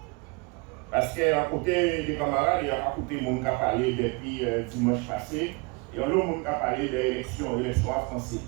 Parce qu'à côté des camarades, il y a à côté de monde qui a parlé depuis dimanche passé, et l'autre monde qui a parlé de l'élection à français.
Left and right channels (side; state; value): left; quieter; 28.6 dB